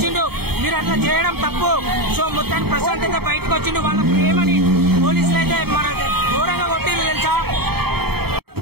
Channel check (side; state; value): left; late; 0.96 ms